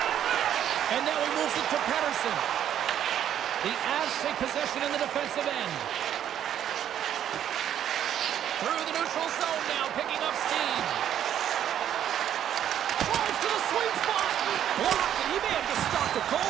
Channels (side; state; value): left; quieter; 10.3 dB